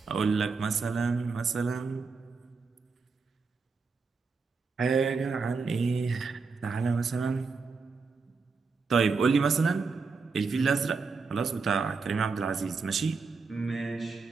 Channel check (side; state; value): left; quieter; 4.7 dB